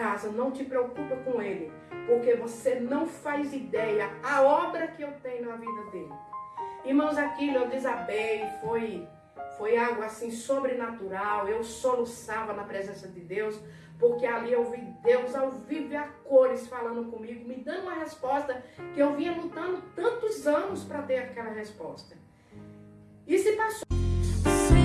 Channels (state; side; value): identical; both; correlation 1.00